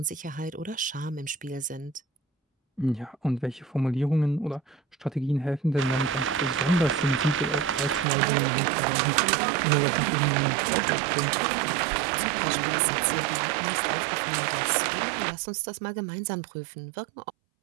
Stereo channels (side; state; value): left; drops out; at 8.1 s